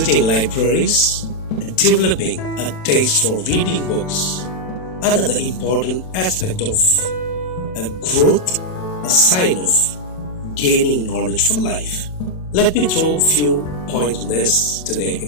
libraries and developing a taste for reading books, another important aspect of a growth, a sign of gaining knowledge for life. Let me throw a few points on this today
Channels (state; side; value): late; right; 27 ms